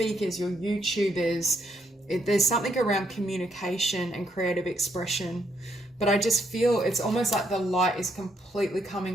your YouTubers, there's something around communication and creative expression. But I just feel it's almost like the light is completely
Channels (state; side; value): normal; both; correlation 0.74